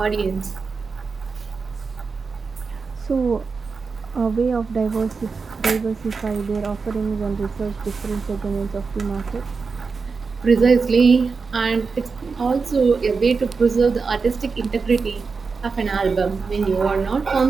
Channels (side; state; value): left; quieter; 4.8 dB